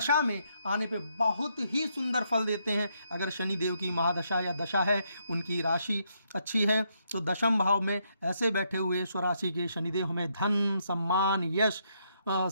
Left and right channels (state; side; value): inverted; both; correlation -0.76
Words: में आने पे बहुत ही सुंदर फल देते हैं। अगर शनिदेव की महादशा या दशा है, उनकी राशि अच्छी है, तो दशम भाव में ऐसे बैठे हुए स्वराशि के शनिदेव हमें धन, सम्मान, यश